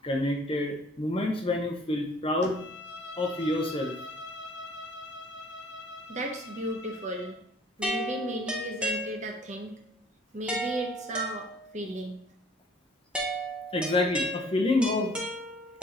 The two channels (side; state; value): both; normal; correlation 0.55